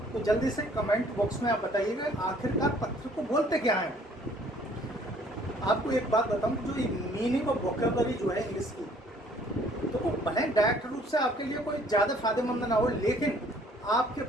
तो जल्दी से कमेंट बॉक्स में आप बताइएगा आखिरकार पत्थर को बोलते क्या हैं। आपको एक बात बताऊं, जो मीनिंग और वोकैबुलरी जो है इंग्लिश की, तो वो भले डायरेक्ट रूप से आपके लिए कोई ज़्यादा फायदेमंद ना हो, लेकिन आपके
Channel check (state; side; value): normal; both; correlation 0.59